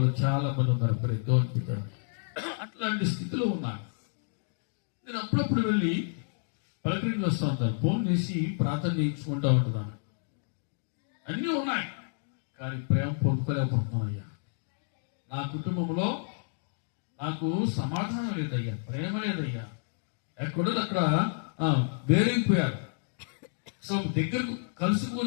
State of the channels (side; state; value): right; silent; digital silence